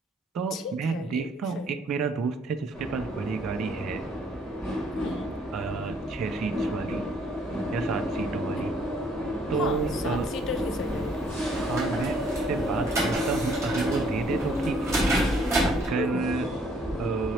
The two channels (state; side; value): normal; both; correlation 0.64